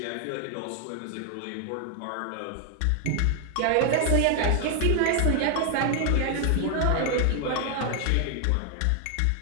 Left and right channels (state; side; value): different; both; correlation 0.00